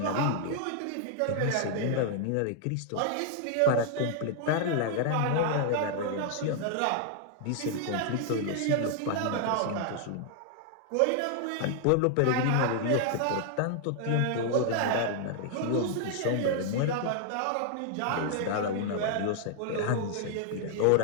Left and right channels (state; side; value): different; both; correlation 0.00